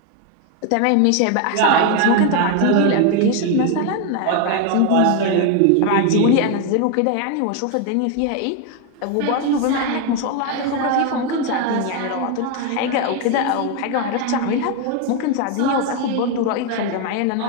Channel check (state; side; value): different; both; correlation 0.01